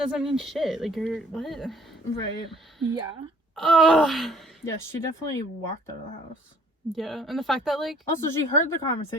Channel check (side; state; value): both; normal; correlation 0.57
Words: mean shit. Like, you're... What? Right. Yeah. Ugh. Yeah, she definitely walked out of the house. Yeah. And the fact that, like... Also, she heard the